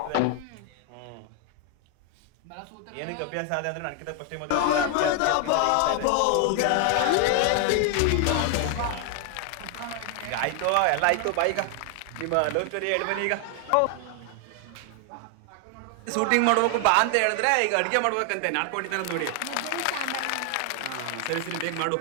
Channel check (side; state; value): both; different; correlation 0.00